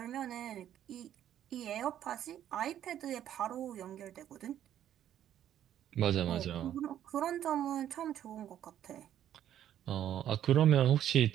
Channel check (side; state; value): left; quieter; 11.0 dB